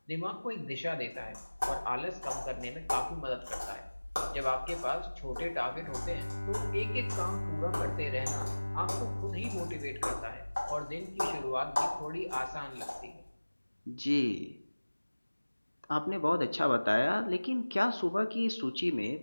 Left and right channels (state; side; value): inverted; both; correlation -1.00